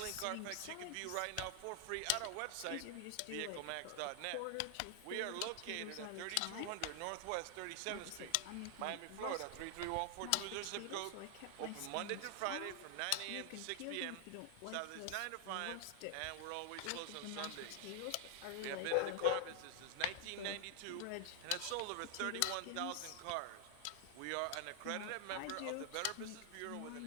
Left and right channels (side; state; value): both; different; correlation 0.00